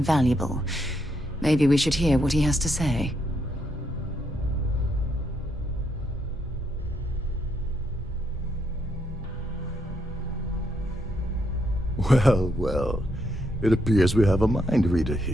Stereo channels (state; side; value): normal; both; correlation 0.77